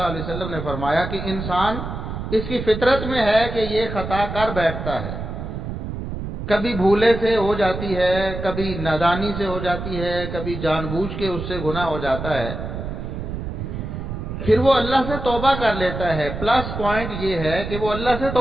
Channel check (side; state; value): right; noise; rumble, 6 dB below the sound